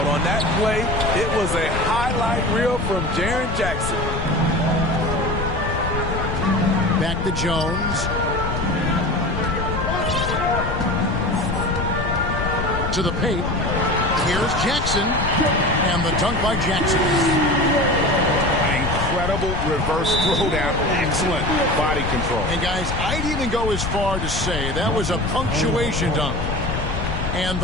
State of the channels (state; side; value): noise; left; rumble, 3 dB below the sound